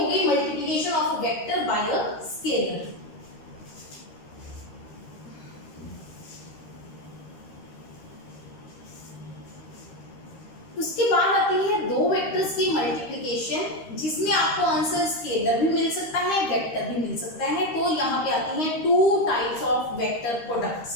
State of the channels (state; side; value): late; right; 13 ms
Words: गई multiplication of vector by a scalar. उसके बाद आती है दो वेक्टर्स की मल्टीप्लिकेशन, जिसमें आपको आंसर स्केलर भी मिल सकता है, वेक्टर भी मिल सकता है। तो यहाँ पे आती है 2 टाइप्स ऑफ वेक्टर